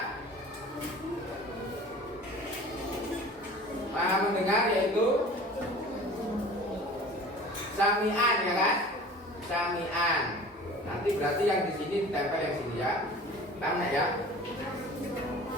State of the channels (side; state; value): both; normal; correlation 0.42